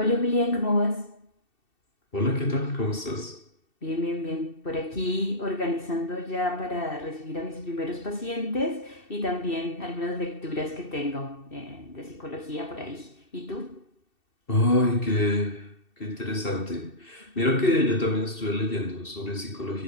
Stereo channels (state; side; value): late; right; 2.7 ms